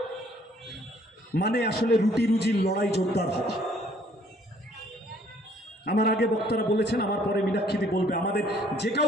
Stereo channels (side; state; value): both; normal; correlation 0.61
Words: মানে আসলে রুটি রুজির লড়াই জোরদার হওয়া। আমার আগে বক্তারা বলেছেন, আমার পরে মীনাক্ষীদি বলবে, আমাদের যে